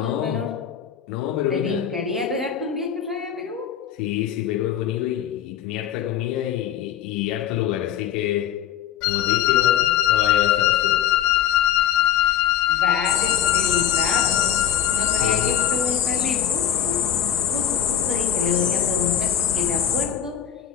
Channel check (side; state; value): right; quieter; 9.9 dB